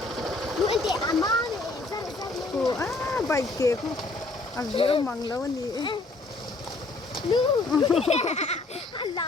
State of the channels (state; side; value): quieter; right; 3.2 dB